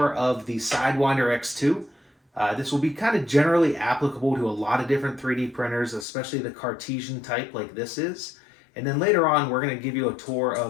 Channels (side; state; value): right; drops out; at 6.1 s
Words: of the Sidewinder X2. This will be kind of generally applicable to a lot of different 3D printers, especially the cartesian type like this is. And then later on we're going to give you a tour